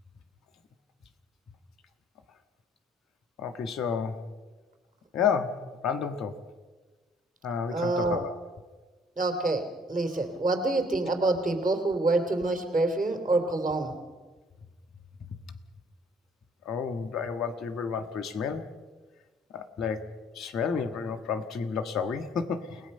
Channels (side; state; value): both; normal; correlation 0.59